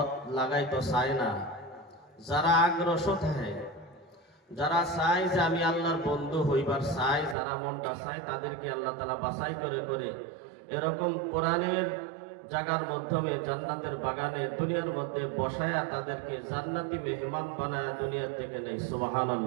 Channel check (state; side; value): drops out; left; at 7.4 s